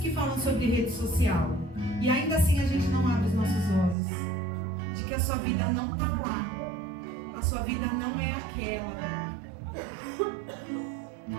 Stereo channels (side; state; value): left; drops out; at 4.0 s